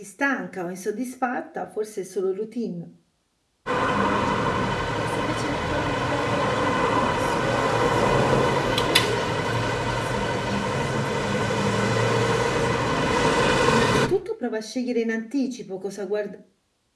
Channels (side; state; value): both; identical; correlation 1.00